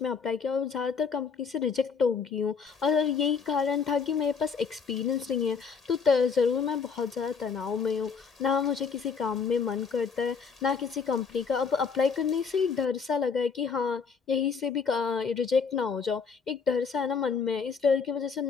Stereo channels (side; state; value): right; quieter; 5.7 dB